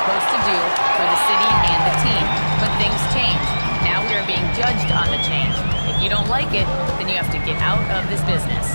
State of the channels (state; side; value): inverted; both; correlation -1.00